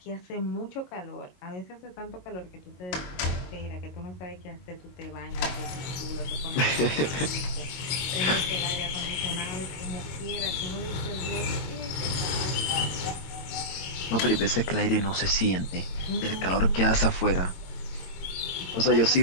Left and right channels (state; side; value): late; right; 22 ms